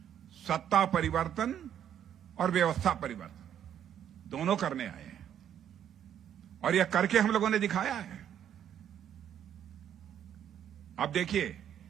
सत्ता परिवर्तन और व्यवस्था परिवर्तन दोनों करने आए हैं, और यह करके हम लोगों ने दिखाया है। अब देखिए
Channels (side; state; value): left; quieter; 9.8 dB